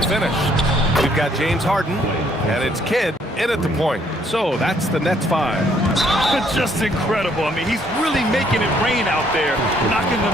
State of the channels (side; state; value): both; normal; correlation 0.66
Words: We've got James Harden, and it's Kidd in at the point. So that's the Nets 5. Just incredible. I mean, he's really making it rain out there, knocking